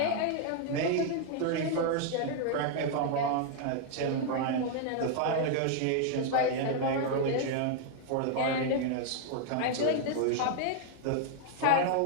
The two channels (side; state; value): both; different; correlation 0.00